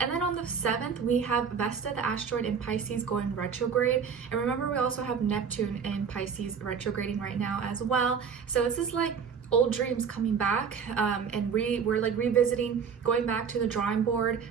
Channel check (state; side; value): quieter; left; 6.5 dB